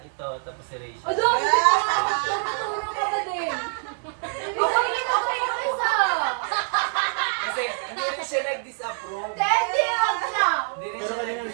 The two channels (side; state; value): left; silent; digital silence